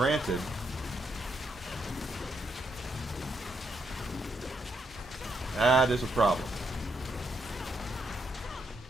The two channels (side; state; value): both; normal; correlation 0.78